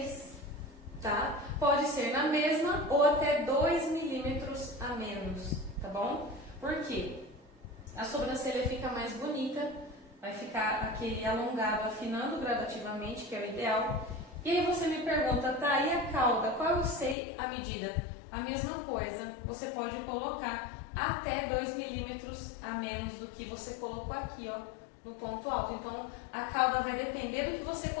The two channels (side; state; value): right; drops out; at 17.2 s